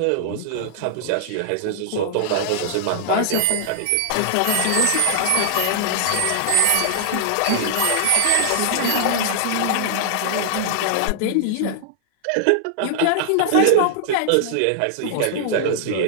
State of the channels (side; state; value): both; different; correlation 0.00